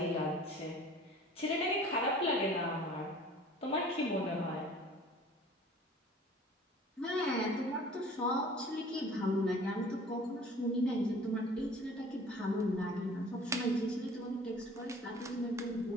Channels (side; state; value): both; normal; correlation 0.48